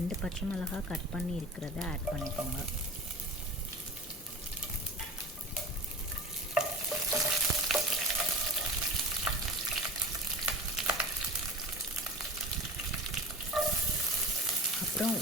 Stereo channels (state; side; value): normal; both; correlation 0.34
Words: பச்சை மிளகாய் கட் பண்ணி இருக்கிறத ஆட் பண்ணிக்கோங்க. அப்புறம்